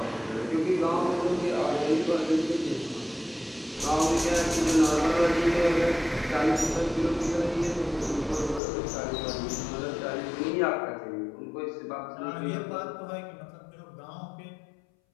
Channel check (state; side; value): drops out; right; at 8.6 s